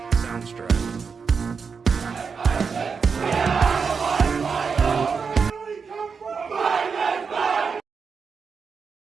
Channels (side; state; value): left; quieter; 5.6 dB